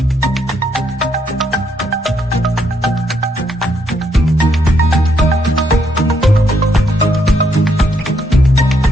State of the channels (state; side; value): normal; both; correlation 0.74